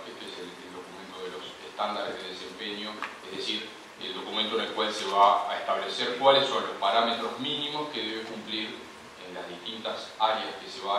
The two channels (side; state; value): both; identical; correlation 1.00